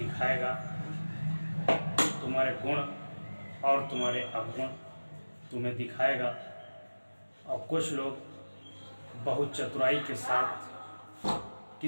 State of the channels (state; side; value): inverted; both; correlation -1.00